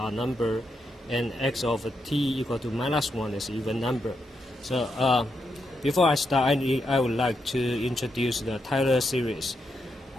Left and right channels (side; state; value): both; normal; correlation 0.82